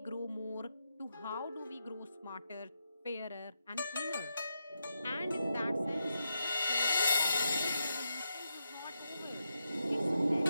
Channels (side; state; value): both; inverted; correlation -0.85